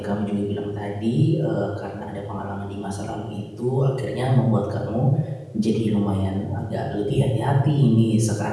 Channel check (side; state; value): both; identical; correlation 1.00